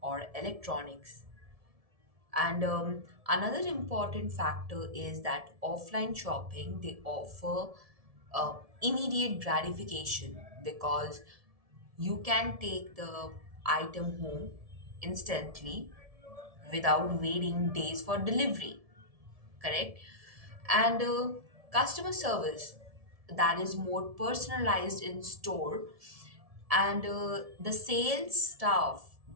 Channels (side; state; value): left; late; 1.7 ms